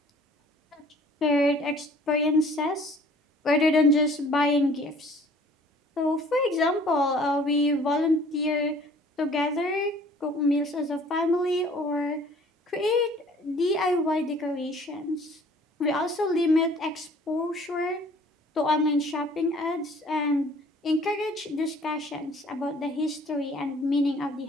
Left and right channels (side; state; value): both; normal; correlation 0.53